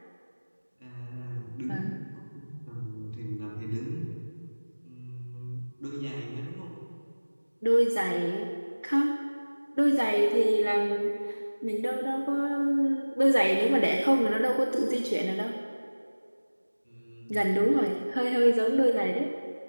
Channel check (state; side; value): inverted; both; correlation -1.00